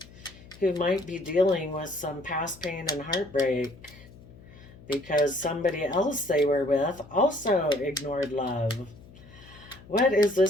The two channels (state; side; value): noise; left; hum, 21 dB below the sound